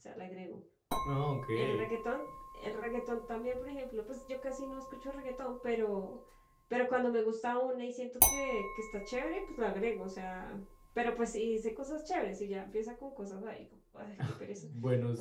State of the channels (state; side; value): identical; both; correlation 1.00